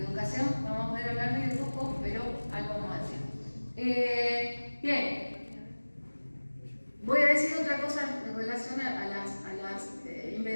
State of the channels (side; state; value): both; inverted; correlation -1.00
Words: educación vamos a poder hablar muy poco, pero algo vamos a decir. Bien. Voy a decir otra cosa en relación a las